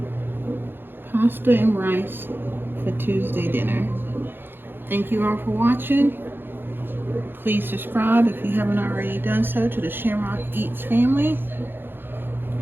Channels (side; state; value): left; late; 0.10 ms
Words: pasta and rice for Tuesday dinner. Thank you all for watching. Please subscribe if you haven't already done so to the ShamRock Eats family.